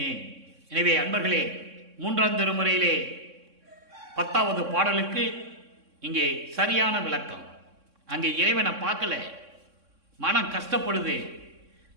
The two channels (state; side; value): late; left; 3.6 ms